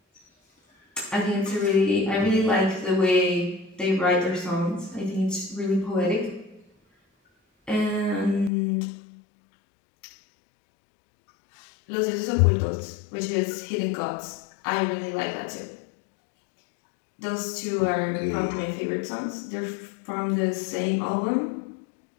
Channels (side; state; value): right; drops out; at 8.5 s